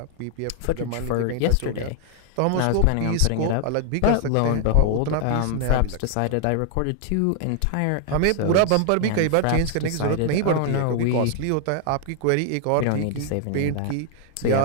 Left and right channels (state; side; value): different; both; correlation 0.00